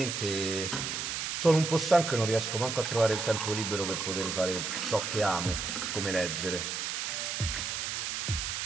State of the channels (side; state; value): right; noise; hiss, 2 dB below the sound